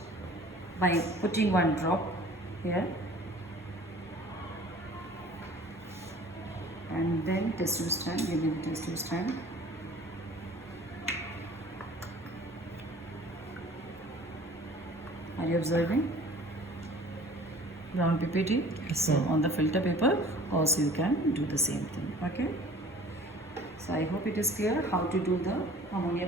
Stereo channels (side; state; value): both; normal; correlation 0.47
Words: by putting one drop here, and then test tube stand, give me the test tube stand. Are you observing? Brown PPT. Yes, So sir. on the filter paper also you can do the same thing. Okay. So I hope it is clear how to do the